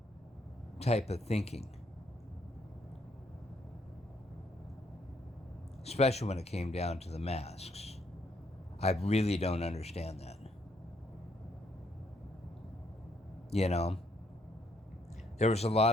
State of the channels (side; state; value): both; normal; correlation 0.72